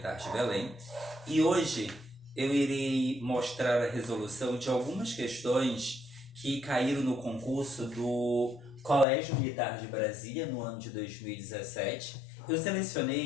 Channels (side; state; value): right; drops out; at 9.1 s